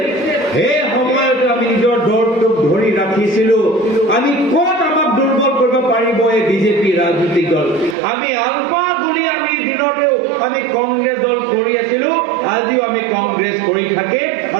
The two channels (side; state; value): left; drops out; at 8.0 s